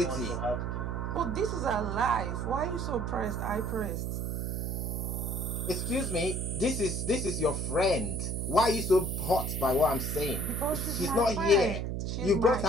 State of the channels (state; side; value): noise; right; hum, 2 dB below the sound